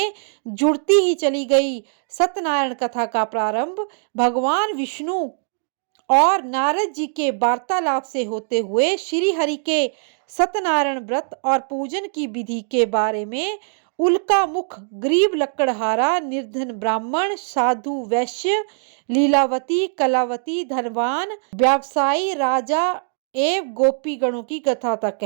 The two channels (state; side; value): silent; left; digital silence